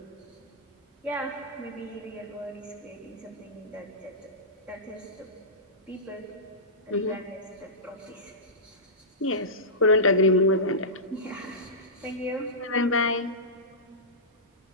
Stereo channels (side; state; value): both; normal; correlation -0.17